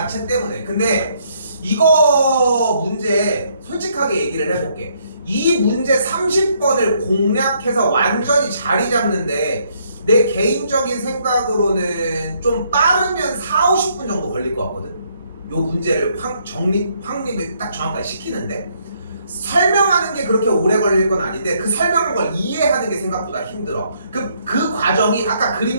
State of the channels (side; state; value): both; inverted; correlation -0.70